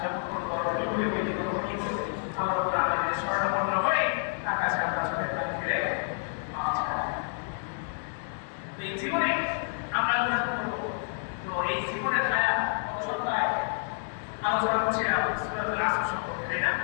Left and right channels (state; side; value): silent; right; 58 dB below the other